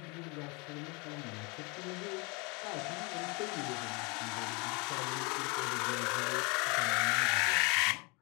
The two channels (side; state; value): right; quieter; 28.9 dB